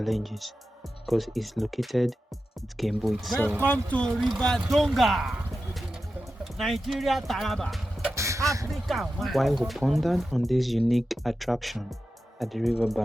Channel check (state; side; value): normal; both; correlation 0.92